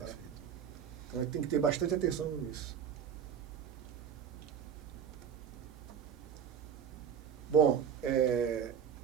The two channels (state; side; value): quieter; left; 8.0 dB